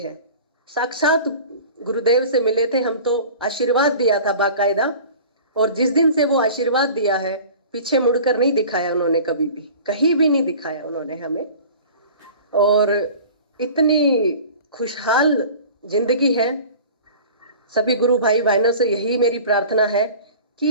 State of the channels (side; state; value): both; inverted; correlation -0.41